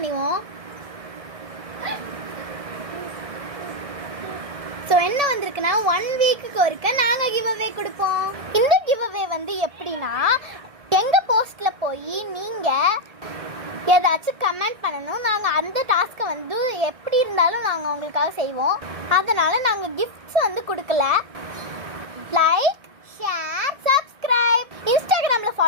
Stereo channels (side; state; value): left; late; 1.6 ms